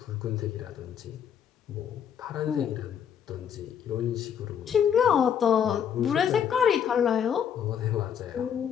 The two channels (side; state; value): right; quieter; 8.5 dB